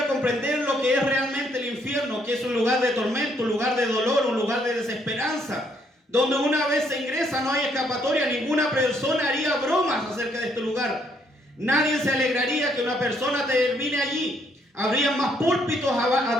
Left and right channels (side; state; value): both; normal; correlation 0.70